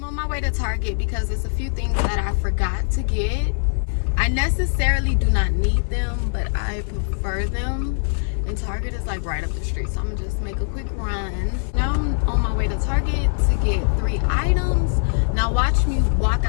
Way to Target because there's a few things that I forgot to get. I necessarily do not need them, but I prefer them, and Target is like right up the street, so I'm gonna just make a quick run. Now I'm on my way to Target to get 3 items. Now watch me walk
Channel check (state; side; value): silent; right; 55 dB below the other